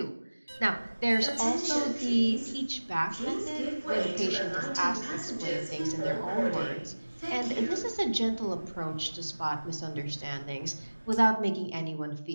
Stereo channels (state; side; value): inverted; both; correlation -1.00